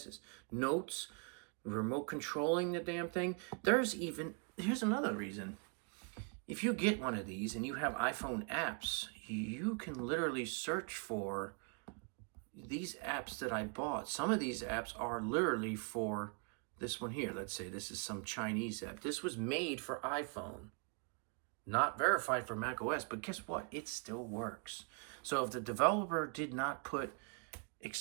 Notes, remote controlling the damn thing. Here's another reason. If you get one of these and you have iPhone apps, you can literally search for these apps that I bought. Some of these apps are literally for this one here. Let's say this is some Chinese app. This was made for iPhone, not verified for macOS, but guess what? It still works. So if the developer did not put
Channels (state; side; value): quieter; left; 37.3 dB